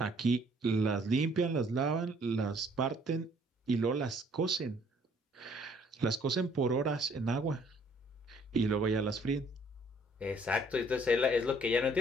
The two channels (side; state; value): both; normal; correlation 0.61